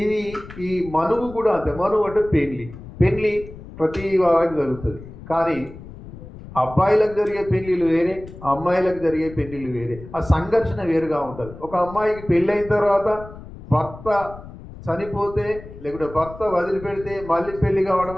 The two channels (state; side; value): noise; left; rumble, 15 dB below the sound